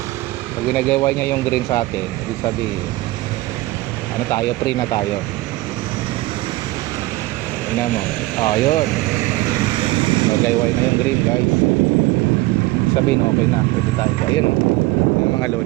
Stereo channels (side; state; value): left; quieter; 19.4 dB